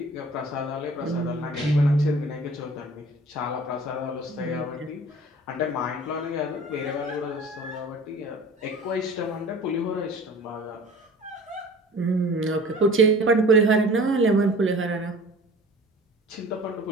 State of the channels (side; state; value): both; normal; correlation 0.44